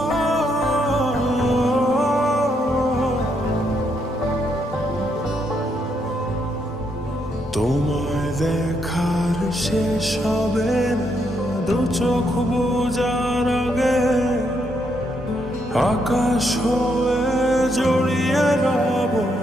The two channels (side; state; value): both; normal; correlation 0.76